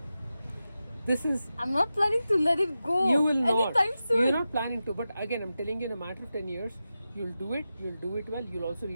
This is, I'm not planning to let it go. you will not. Anytime soon. You're not planning to. But again, I'm telling you, in a matter of 10 years, you'll do it well. You'll also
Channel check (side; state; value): both; inverted; correlation -0.92